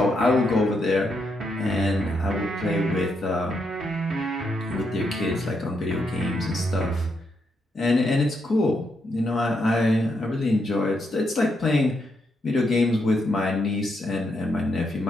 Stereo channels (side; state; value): both; normal; correlation 0.80